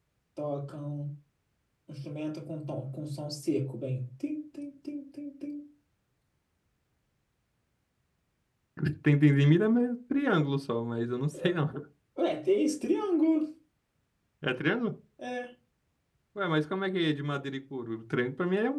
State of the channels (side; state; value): both; identical; correlation 1.00